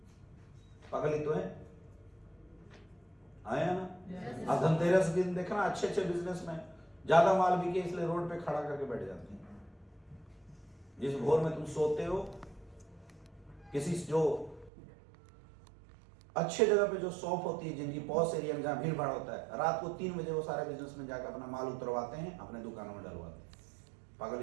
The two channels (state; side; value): drops out; left; at 14.7 s